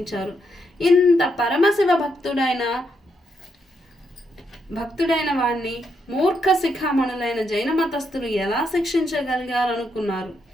ఇంత పరమశివ భక్తుడైన భక్తుడైన వాణ్ణి మూర్ఖ శిఖామణులైన జైన మతస్థులు ఎలా శిక్షించగలిగారనుకున్నారు?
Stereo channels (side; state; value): both; normal; correlation 0.79